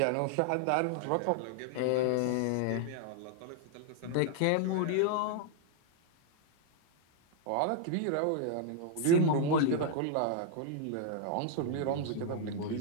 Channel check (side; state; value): both; different; correlation -0.01